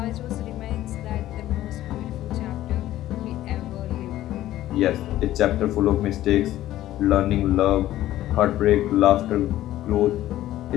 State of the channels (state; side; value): quieter; right; 14.1 dB